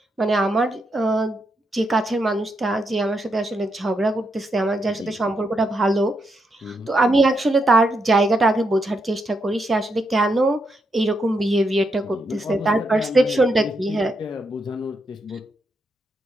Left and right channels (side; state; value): both; normal; correlation 0.81